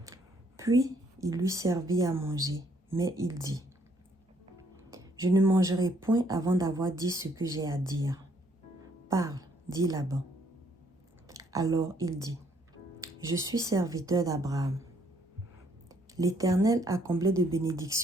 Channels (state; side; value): normal; both; correlation 0.67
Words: Puis il lui servit à manger, mais il dit, je ne mangerai point avant d'avoir dit ce que j'ai à dire. Parle, dit Laban. Alors il dit, je suis serviteur d'Abraham. L'Éternel a comblé de